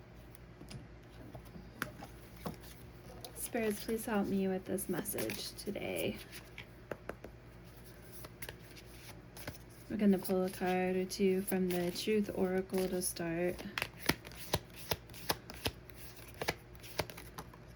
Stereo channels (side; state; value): both; identical; correlation 1.00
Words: Spirits, please help me with this message today. We're going to pull a card or two from the Truth Oracle to start.